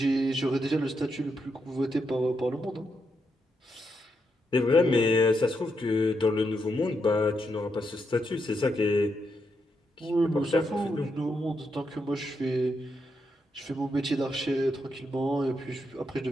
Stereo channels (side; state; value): both; normal; correlation 0.82